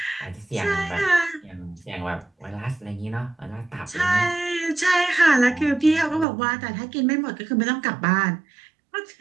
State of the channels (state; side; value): drops out; left; at 6.2 s